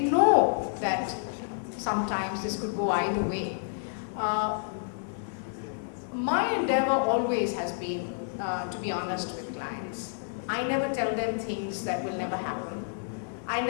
that sometimes this could go either way. My endeavor always has been to be honest with clients. I never tell them things that will never happen. I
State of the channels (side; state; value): right; silent; 58 dB below the other